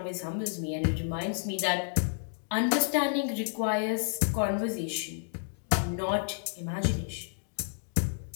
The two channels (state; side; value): silent; right; digital silence